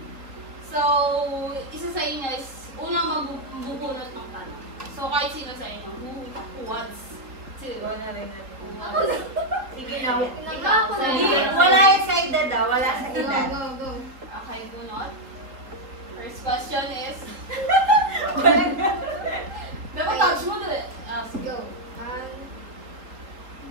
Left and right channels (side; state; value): left; late; 3.6 ms